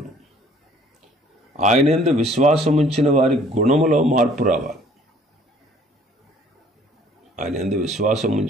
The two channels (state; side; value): normal; both; correlation 0.57